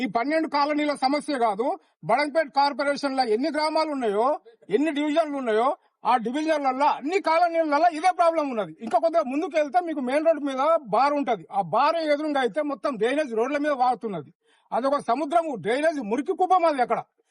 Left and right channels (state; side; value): identical; both; correlation 1.00